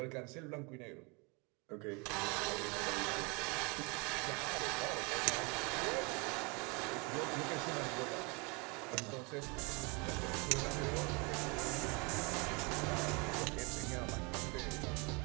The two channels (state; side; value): quieter; left; 30.1 dB